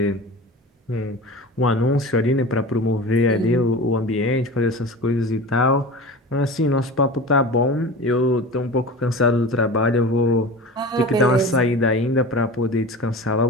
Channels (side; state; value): both; normal; correlation 0.33